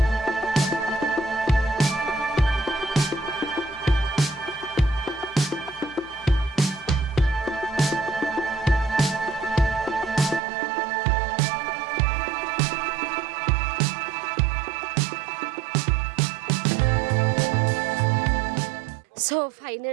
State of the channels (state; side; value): drops out; left; at 10.4 s